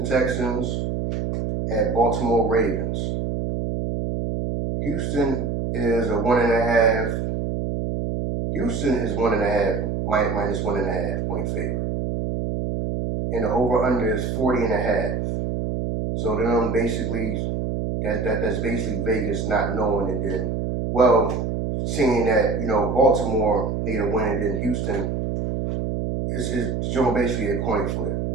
Texans at Baltimore Ravens. Houston is a 1.5. Houston is 1.5, minus 1.5 point favorite. And the over-under is 40.5. So then basically, that's basically Vegas not knowing, and then, well, seeing that, Baltimore need a win, and then Houston is basically a coin flip.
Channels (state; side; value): noise; right; hum, 2 dB below the sound